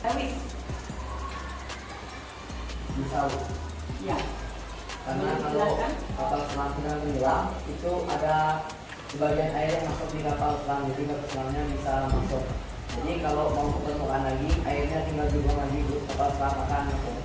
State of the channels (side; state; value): both; identical; correlation 1.00